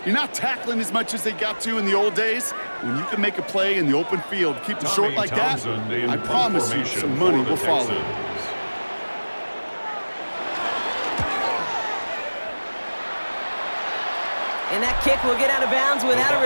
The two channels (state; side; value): inverted; both; correlation -1.00